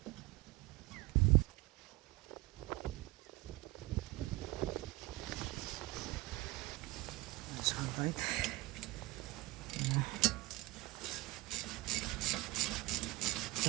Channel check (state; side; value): quieter; left; 20.6 dB